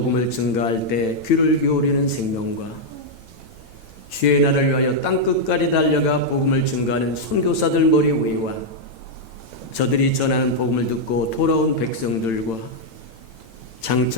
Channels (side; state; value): right; late; 8.9 ms